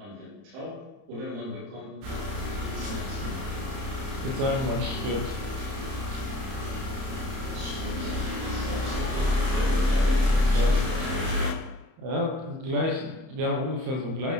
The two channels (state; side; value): late; left; 31 ms